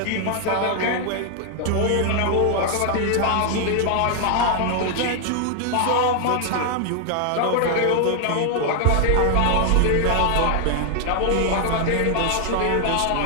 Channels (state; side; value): different; both; correlation 0.00